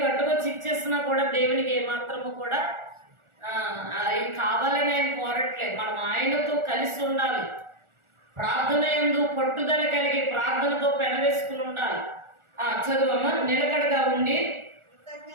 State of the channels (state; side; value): late; left; 1.4 ms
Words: అట్టుకొచ్చి ఇచ్చేసినా కూడా దేవునికి ఏమాత్రము కూడా అవి కావాలని ఆయన కోరట్లేదు. మనం ఆయనతో కలిసి ఉండాలి. ప్రార్థన యందు పట్టుదల కలిగి ప్రార్థనతో పెనవేసుకుని ఉండాలి. చదువమ్మ. నిలకడగా ఉండి